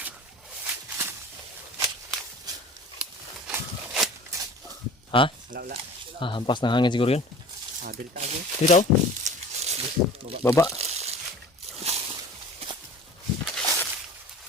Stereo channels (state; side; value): normal; both; correlation 0.41